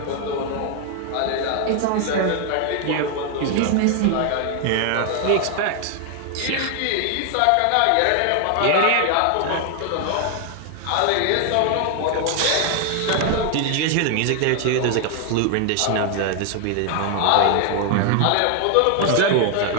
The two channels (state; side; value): different; both; correlation 0.00